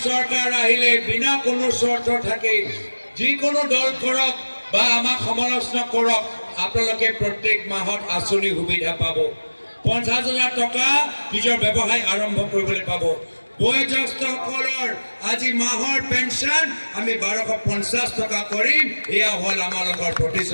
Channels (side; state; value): both; inverted; correlation -1.00